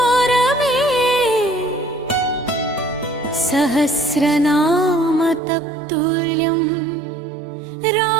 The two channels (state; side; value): drops out; left; at 5.4 s